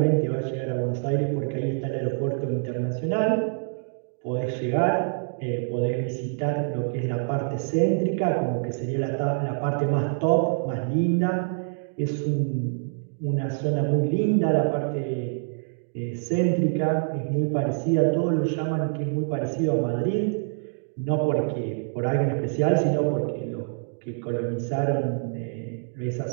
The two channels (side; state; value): left; silent; digital silence